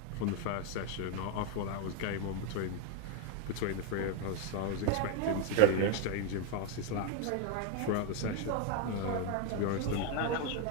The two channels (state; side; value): different; both; correlation 0.01